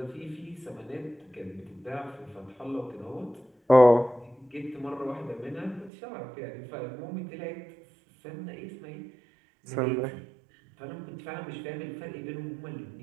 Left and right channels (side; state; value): left; drops out; at 5.9 s